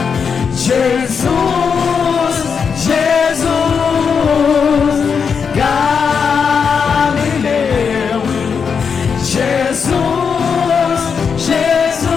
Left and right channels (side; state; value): right; quieter; 6.2 dB